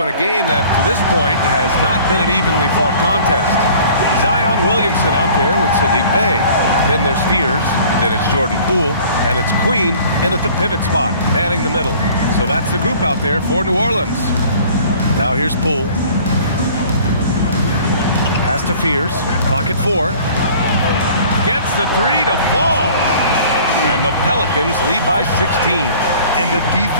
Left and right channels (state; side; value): inverted; both; correlation -0.50